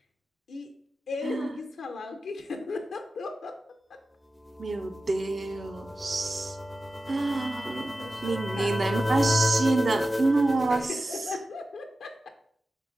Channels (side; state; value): both; normal; correlation 0.94